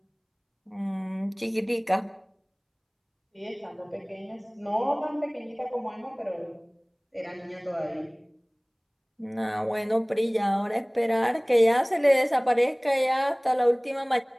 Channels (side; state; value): both; identical; correlation 1.00